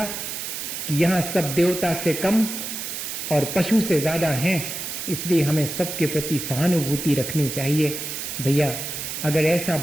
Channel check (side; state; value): right; noise; hiss, 6 dB below the sound